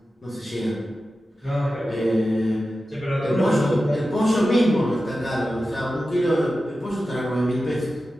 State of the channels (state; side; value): normal; both; correlation 0.93